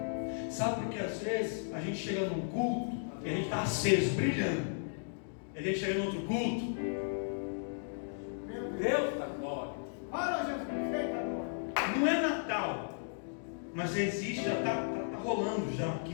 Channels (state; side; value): silent; right; digital silence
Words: Sabe por que às vezes a gente chega num culto e a gente está aceso, brilhando, e a gente chega em outro culto, Deus da glória. não é Natal, mas existe, já está rolando já aqui